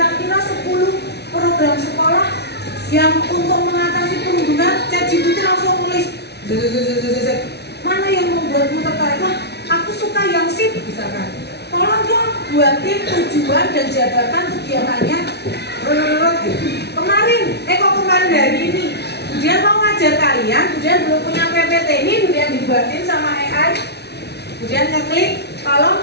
10 program sekolah yang untuk mengatasi perundungan. ChatGPT langsung nulis, mana yang membuatmu tertarik? Wah, aku suka yang sip misalkan. Tolong dong buatin tujuan dan jabatan kegiatannya. Kemarin hari ini Budian mau ngajar kalian, Budian belum punya PPT ini, Budian dibuatin sama AI. Budian ngeklik,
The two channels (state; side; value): late; right; 0.49 ms